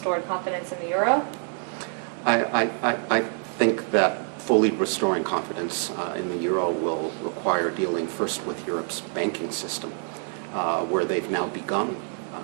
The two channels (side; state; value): left; quieter; 40.0 dB